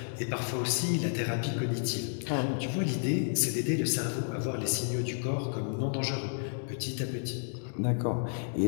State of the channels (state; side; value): silent; right; digital silence